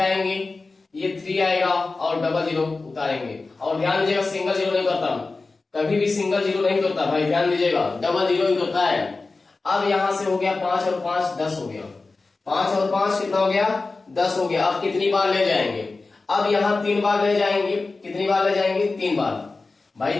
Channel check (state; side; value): quieter; right; 3.7 dB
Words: ये 3 आएगा और डबल जीरो उतारेंगे। और ध्यान दीजिएगा, सिंगल जीरो नहीं करता, कभी भी सिंगल जीरो नहीं करता भाई, ध्यान दीजिएगा, डबल जीरो ही करता है। अब यहां से हो गया 5 और 5 10 हो गया। 5 और 5 कितना हो गया? 10 हो गया। अब कितनी बार ले जाएंगे? अब यहाँ 3 बार ले जाएंगे। कितनी बार ले जाएंगे? 3 बार भाई,